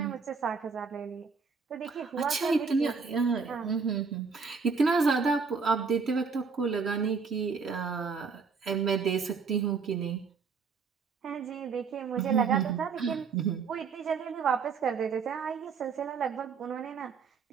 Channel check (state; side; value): quieter; left; 5.3 dB